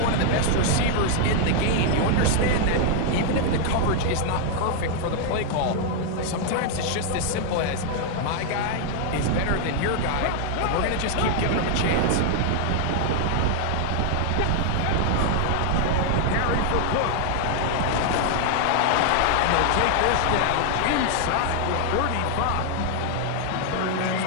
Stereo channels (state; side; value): different; both; correlation 0.00